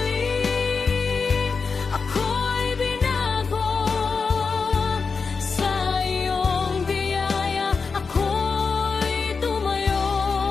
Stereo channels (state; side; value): quieter; right; 4.9 dB